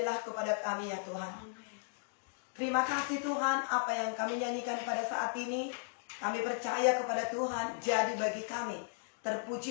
kepada kami ya Tuhan. Terima kasih Tuhan, apa yang kami nyanyikan pada saat ini, kami percaya kepada Tuhan, jadi bagi kami.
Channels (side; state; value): right; silent; digital silence